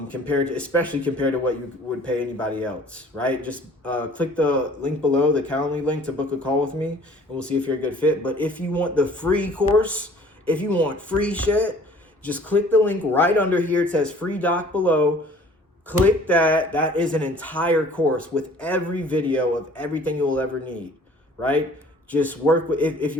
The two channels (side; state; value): both; normal; correlation 0.52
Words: compared to what you would pay anybody else, right? Just click the link below, the Calendly link, to book a call with me, and we'll see if you're a good fit. But if you want the free course, if you want free shit, just click the link right under here. It says free doc below. Click that. That is an entire course with every video of everything you will ever need, right? Just work with, if